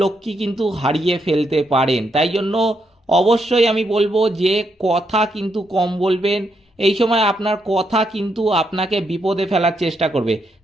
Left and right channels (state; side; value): normal; both; correlation 0.79